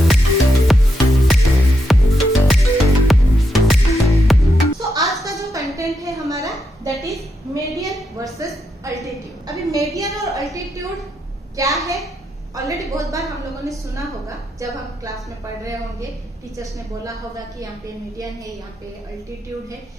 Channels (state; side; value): normal; both; correlation 0.82